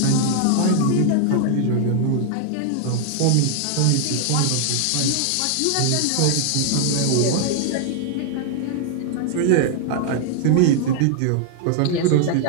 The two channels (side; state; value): both; different; correlation 0.00